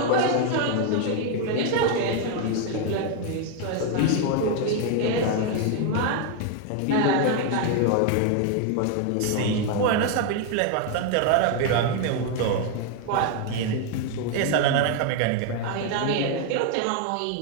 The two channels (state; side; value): different; both; correlation 0.01